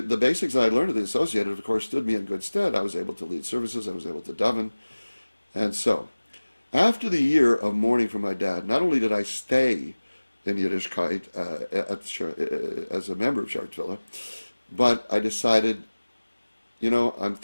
that I learned at the Associated, of course, stood me in good stead. I was able to lead services. I was able to daven, and so after the year of mourning for my dad, not only did I stay in Yiddishkeit as a member of Shaarei Tefillah, but I decided, I'm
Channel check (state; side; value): inverted; both; correlation -1.00